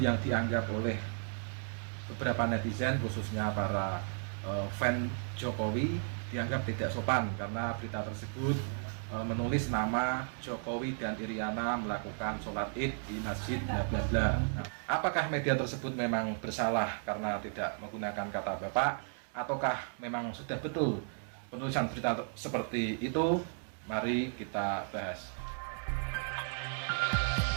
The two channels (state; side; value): silent; left; 55 dB below the other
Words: dianggap oleh beberapa netizen, khususnya para fan Jokowi, dianggap tidak sopan karena berita tersebut menulis nama Jokowi dan Iriana melakukan sholat id di masjid bla bla bla. Nah, apakah media tersebut memang bersalah karena tidak menggunakan kata bapak, ataukah memang sudah betul penulisan berita seperti itu? Mari kita bahas.